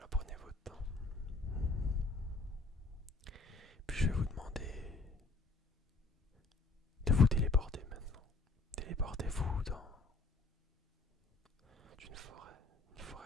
prenez votre temps. Puis je vais vous demander de vous téléporter maintenant. Téléportez-vous dans une forêt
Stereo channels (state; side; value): quieter; right; 3.6 dB